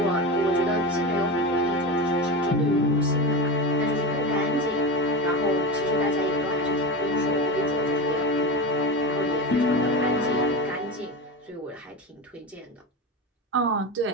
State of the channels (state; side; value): normal; both; correlation 0.22